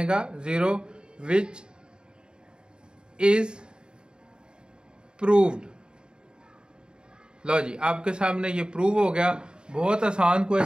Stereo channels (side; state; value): left; late; 0.049 ms